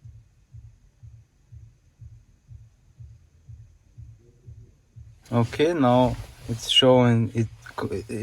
Okay, now it's showing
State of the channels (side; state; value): both; identical; correlation 1.00